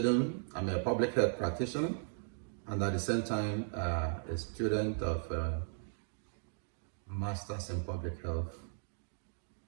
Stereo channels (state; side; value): silent; left; digital silence